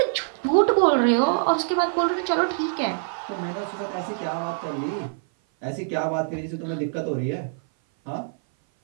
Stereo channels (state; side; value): silent; left; 58 dB below the other